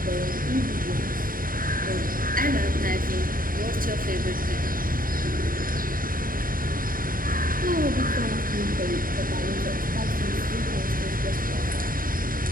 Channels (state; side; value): late; left; 0.41 ms